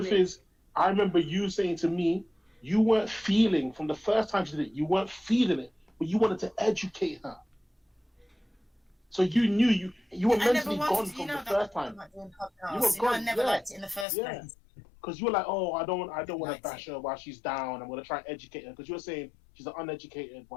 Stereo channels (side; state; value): right; drops out; at 14.1 s